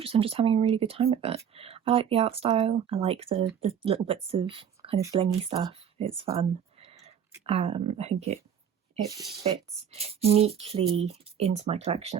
I'm just having a really good time with it. I like the art style. I like the little bits of kind of blingy stuff. It's fun. I think it fits neatly into my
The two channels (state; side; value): quieter; left; 8.3 dB